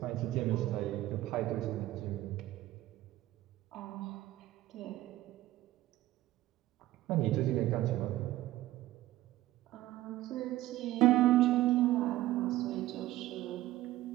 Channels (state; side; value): quieter; left; 15.7 dB